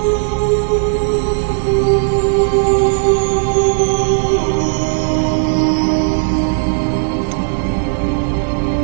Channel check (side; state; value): left; silent; 68 dB below the other